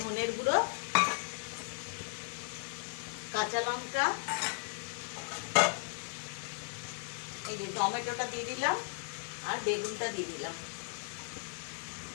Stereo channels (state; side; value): silent; right; 54 dB below the other